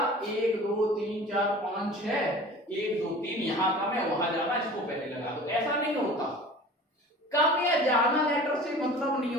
1 2 3 4 5 6, 1 2 3, यहाँ कम है वहां ज्यादा, इसको पहले लगा दो। ऐसा नहीं होता, कम या ज्यादा लेटर से मतलब नहीं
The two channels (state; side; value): normal; both; correlation 0.41